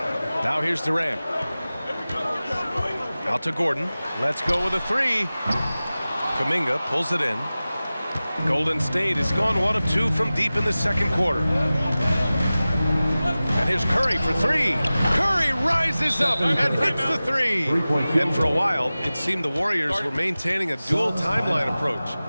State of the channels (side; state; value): both; inverted; correlation -0.97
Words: Now here's Durant. Out to Gordon. Let's go with a 3. Kuminga pulls it in. Golden State has gone 1 of 2 from deep in the second quarter. And here's Curry for 3. Curry rises up and hits the 3. And for a while, it seemed the Warriors were maintaining a dual timeline approach.